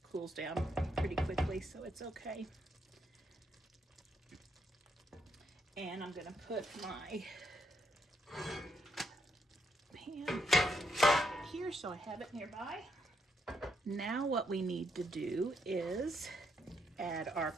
cools down pretty quickly, so it's okay. And I'm gonna put my pan here so I have it nearby. Now what we need to do is add our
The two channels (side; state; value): both; normal; correlation 0.76